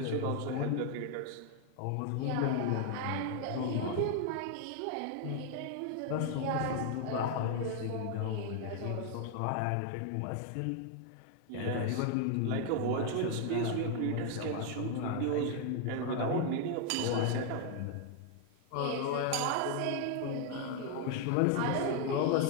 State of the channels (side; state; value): both; different; correlation 0.00